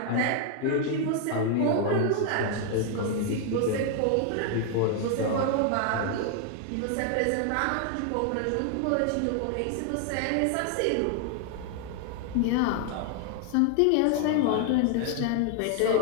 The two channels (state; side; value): different; both; correlation 0.00